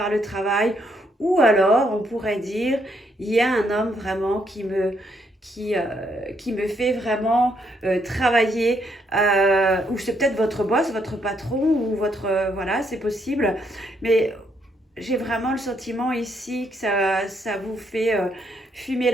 le travail, Ou alors, on pourrait dire, il y a un homme vraiment qui me fait vraiment travailler, ou c'est peut-être votre boss, votre patron, ou votre... voilà, c'est possible. Mais j'ai vraiment le sentiment ici que ça vous fait fumer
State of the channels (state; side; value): normal; both; correlation 0.74